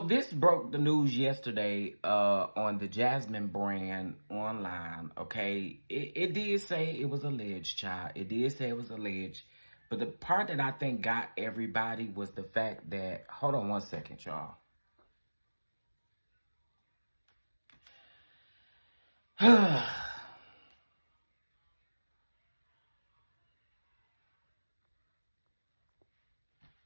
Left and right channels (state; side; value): inverted; both; correlation -1.00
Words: broke the news yesterday on the Jasmine brand online, okay? It did say it was alleged, child. It did say it was alleged. But the part that I think got everybody was the fact that... Hold on one second, y'all.